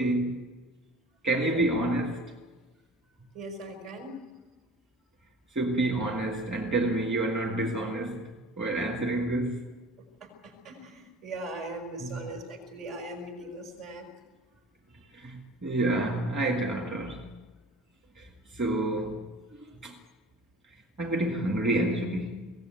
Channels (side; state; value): both; normal; correlation 0.44